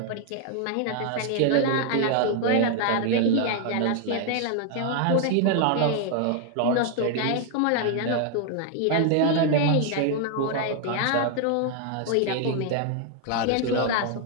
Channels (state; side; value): different; both; correlation 0.00